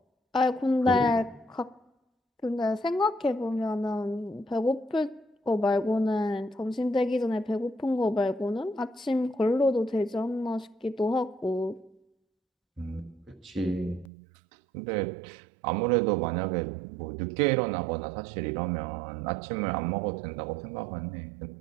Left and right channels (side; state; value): left; drops out; at 14.1 s